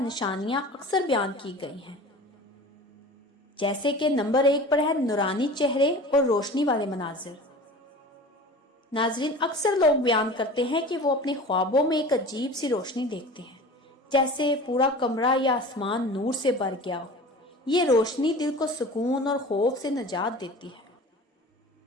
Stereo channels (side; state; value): both; normal; correlation 0.38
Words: نشانیاں اکثر بیان کی گئی ہیں، جیسے کہ نمبر 1 پر ہے نورانی چہرے اور روشنی والے مناظر۔ ناظرین، اکثر لوگ بیان کرتے ہیں کہ وہ اپنے خوابوں میں ایک عجیب سی روشنی دیکھتے ہیں، جیسے پورا کمرہ یا آسمان نور سے بھر گیا ہو۔ یہ روشنی دل کو سکون اور خوف سے نجات دیتی ہے۔